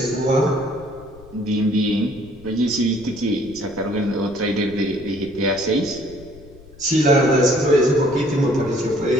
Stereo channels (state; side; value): noise; left; rumble, 22 dB below the sound